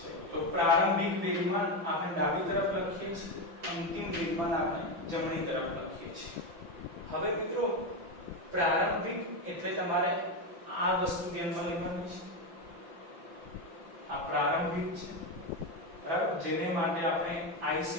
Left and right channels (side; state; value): left; late; 5.8 ms